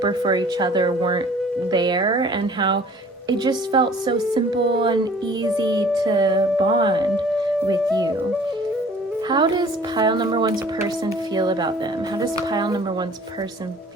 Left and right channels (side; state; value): both; normal; correlation 0.51